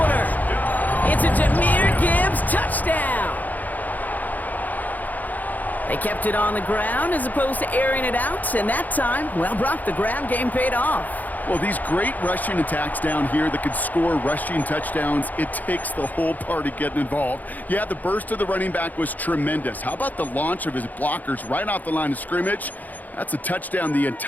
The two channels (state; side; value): late; right; 0.082 ms